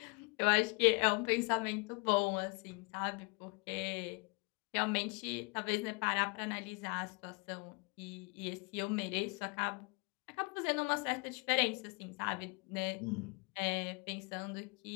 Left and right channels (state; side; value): quieter; right; 30.9 dB